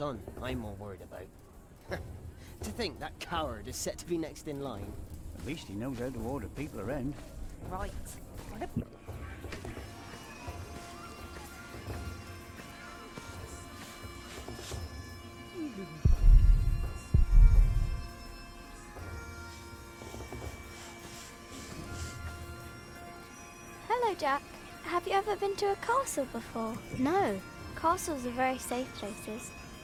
I'm more worried about. To think that coward is set to be next in line. At least he knows how to order people around. Right. Hello, Jack. Have you ever been to a castle before? No. Castles are very safe places.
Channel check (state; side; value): identical; both; correlation 1.00